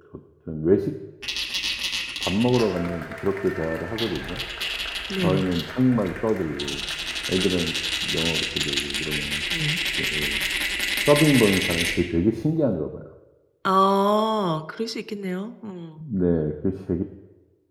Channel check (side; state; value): both; identical; correlation 1.00